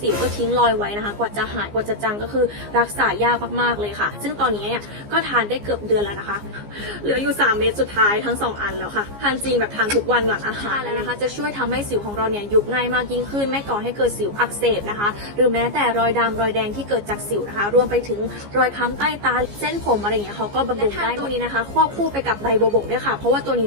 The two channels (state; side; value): late; left; 15 ms